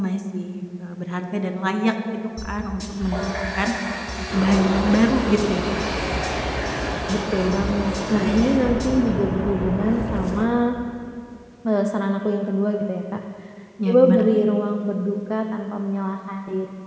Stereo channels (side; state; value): both; identical; correlation 1.00